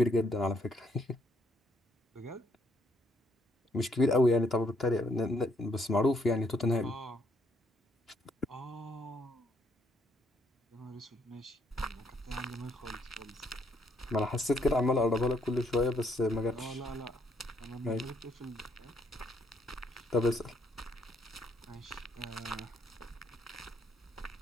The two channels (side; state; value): both; normal; correlation 0.71